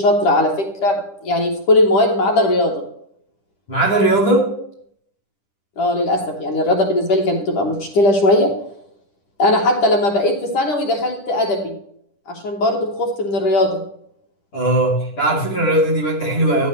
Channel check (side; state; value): right; late; 10 ms